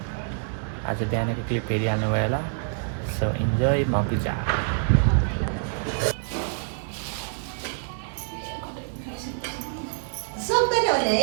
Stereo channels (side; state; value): left; silent; digital silence